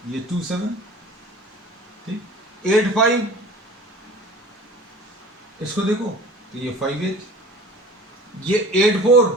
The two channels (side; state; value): both; normal; correlation 0.43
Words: ये 2 7, ठीक। 8 5, इसको देखो तो ये 5 8, ये 8 4,